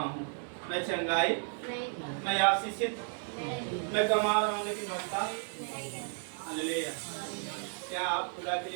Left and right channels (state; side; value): silent; left; 55 dB below the other